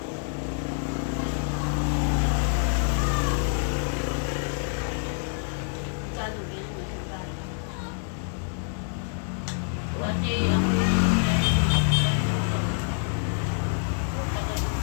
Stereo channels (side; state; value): right; silent; 60 dB below the other